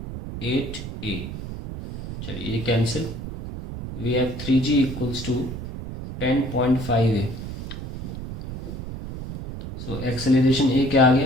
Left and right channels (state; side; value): noise; right; rumble, 8 dB below the sound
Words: 8a। चलिए ये cancel. We have 3G equals to 10.5a। So acceleration a क्या आ